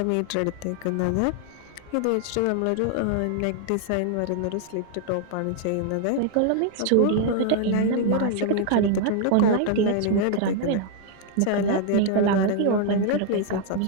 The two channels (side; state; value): both; different; correlation 0.00